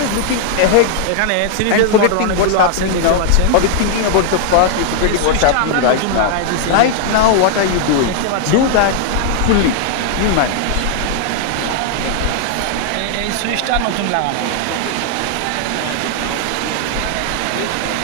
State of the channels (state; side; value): different; both; correlation 0.00